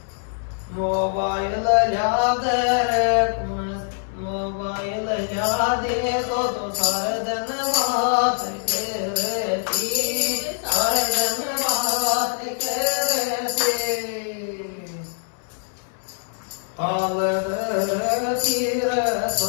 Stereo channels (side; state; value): right; silent; 63 dB below the other